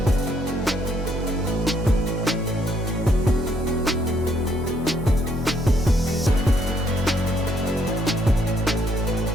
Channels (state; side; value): normal; both; correlation 0.70